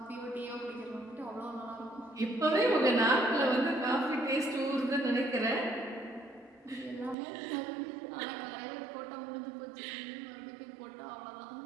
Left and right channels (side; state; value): left; drops out; at 7.2 s